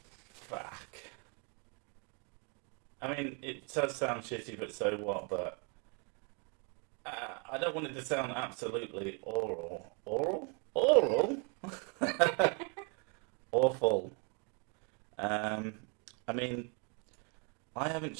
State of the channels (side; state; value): left; quieter; 35.2 dB